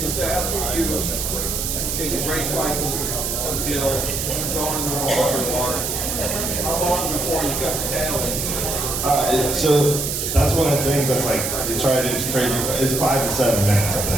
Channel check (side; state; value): right; noise; hiss, 2 dB below the sound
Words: after you raise rifles, come kill, throwing in the water, how long before you cut the tail? So that's one of the things that's like, they try to do is crazy. It's 5 to 7 minutes, I